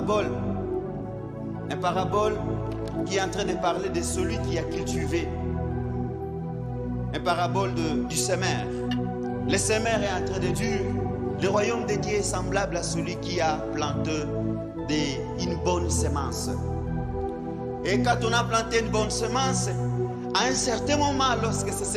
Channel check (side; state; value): both; identical; correlation 1.00